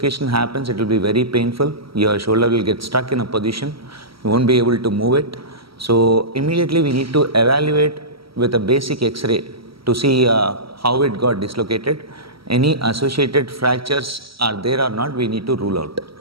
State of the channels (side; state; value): left; late; 0.75 ms